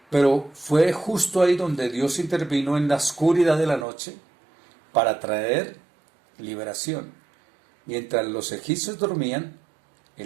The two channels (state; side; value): drops out; left; at 3.9 s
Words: pero fue justo ahí donde Dios intervino en la oscuridad de la noche para traer liberación. Mientras los egipcios dormían,